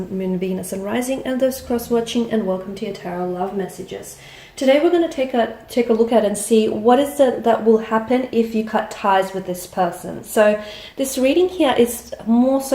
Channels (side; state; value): both; identical; correlation 1.00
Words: Moon, Venus and Rising, and those cross-watching, and welcome to your Tarot Love Messages. Today we're going to take a look at and see what is it that will happen if you cut ties with this person. So this reading here is more